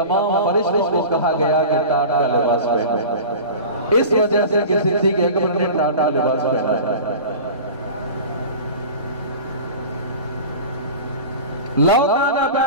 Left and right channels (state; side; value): inverted; both; correlation -0.35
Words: फरिश्तों को कहा गया कि टाट का लिबास पहने। इस वजह से कि सिद्दीक़ अकबर ने टाट का लिबास पहना है। लौकाना